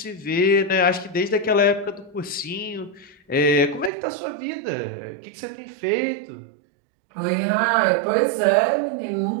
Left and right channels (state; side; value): drops out; left; at 3.9 s